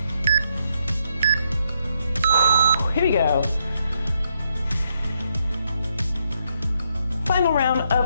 Here we go. Final round of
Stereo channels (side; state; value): both; inverted; correlation -0.76